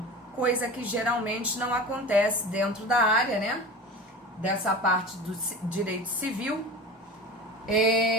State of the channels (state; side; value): normal; both; correlation 0.32